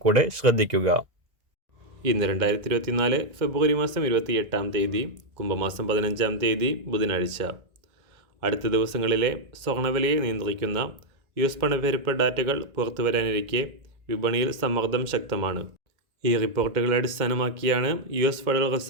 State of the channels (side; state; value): left; late; 2.1 ms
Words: കൂടെ ശ്രദ്ധിക്കുക. ഇന്ന് 2024 ഫെബ്രുവരി മാസം 28-ാം തീയതി, കുംഭമാസം 15-ാം തീയതി ബുധനാഴ്ച. അടുത്ത ദിവസങ്ങളിലെ സ്വർണ്ണവിലയെ നിയന്ത്രിക്കുന്ന US പണപ്പെരുപ്പ ഡാറ്റകൾ പുറത്തുവരാനിരിക്കെ വിപണിയിൽ സമ്മർദ്ദം ശക്തമാണ്. ഈ റിപ്പോർട്ടുകളെ അടിസ്ഥാനമാക്കിയാണ് US ഫെഡറൽ